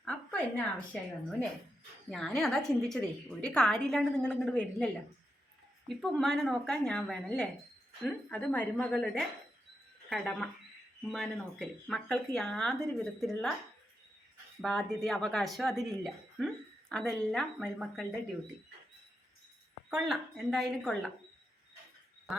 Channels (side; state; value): both; normal; correlation 0.85